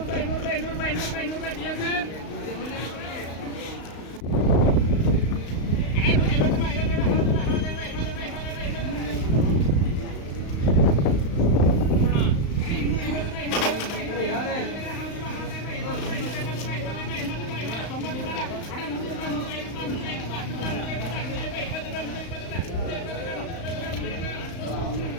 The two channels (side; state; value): right; late; 35 ms